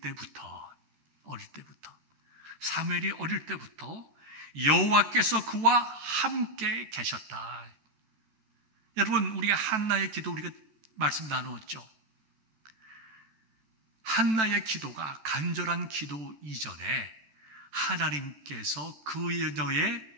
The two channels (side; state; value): left; late; 14 ms